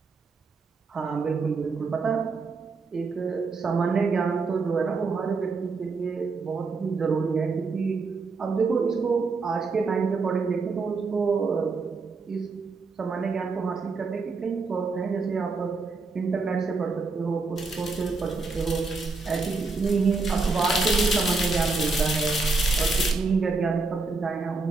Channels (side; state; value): left; quieter; 4.1 dB